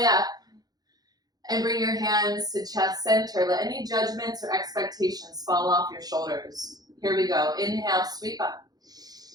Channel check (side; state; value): left; late; 0.19 ms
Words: up. And bring your hands to chest center. Let any judgments or expectations fall off your shoulders. Here we go. Inhale, sweep up.